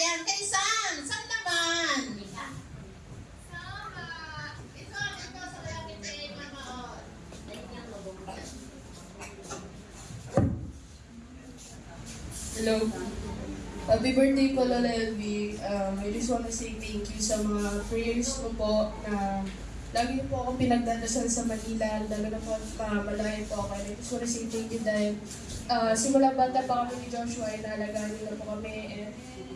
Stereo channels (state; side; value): identical; both; correlation 1.00